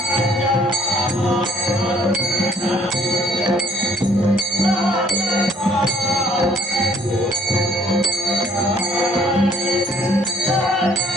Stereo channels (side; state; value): both; normal; correlation 0.61